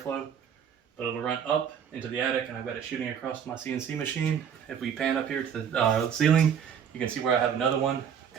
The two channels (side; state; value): left; quieter; 7.9 dB